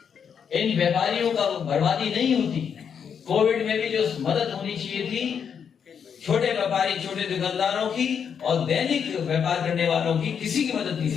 इन व्यापारियों का बर्बादी नहीं होती। कोविड में भी जो मदद होनी चाहिए थी छोटे व्यापारी, छोटे दुकानदारों की और दैनिक व्यापार करने वालों की, किसी की मदद नहीं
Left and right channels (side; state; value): right; quieter; 7.3 dB